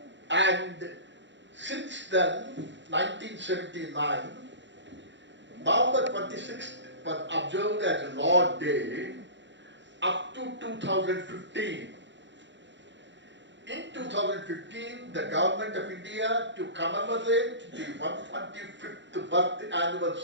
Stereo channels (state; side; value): late; left; 0.53 ms